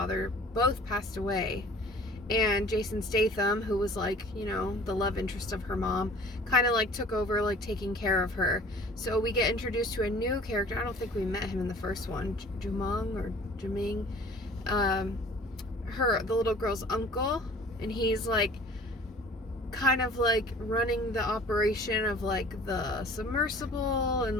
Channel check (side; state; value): both; normal; correlation 0.48